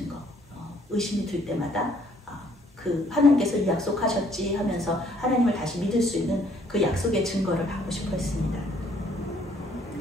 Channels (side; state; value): both; normal; correlation 0.63